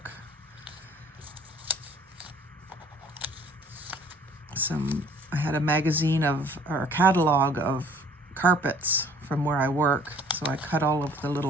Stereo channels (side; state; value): both; normal; correlation 0.55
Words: I had a magazine or a catalog of carpets from where I work, so I cut all of the